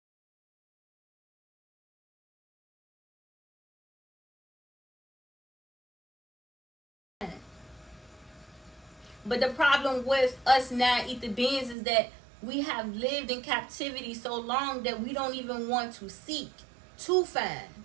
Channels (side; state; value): left; drops out; at 11.8 s